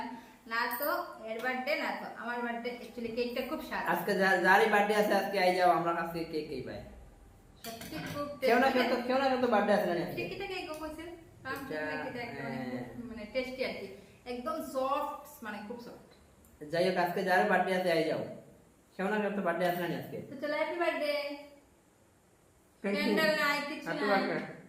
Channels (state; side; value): identical; both; correlation 1.00